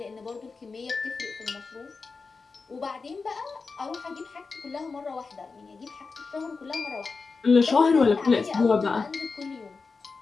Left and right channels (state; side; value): quieter; right; 4.5 dB